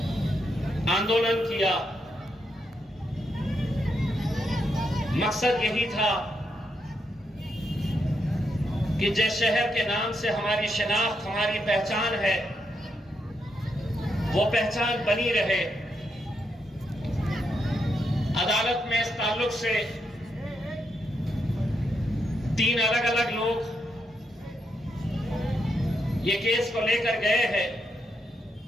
आंदोलन किया। मकसद यही था कि जिस शहर के नाम से हमारी शिनाख्त, हमारी पहचान है, वो पहचान बनी रहे। अदालत में इस ताल्लुक से 3 अलग अलग लोग ये केस को लेकर गए हैं।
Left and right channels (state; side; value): normal; both; correlation 0.81